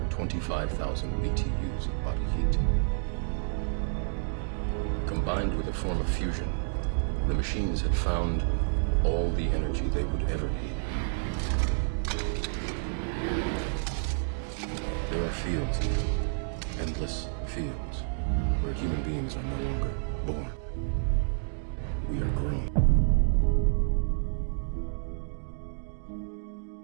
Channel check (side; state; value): left; silent; digital silence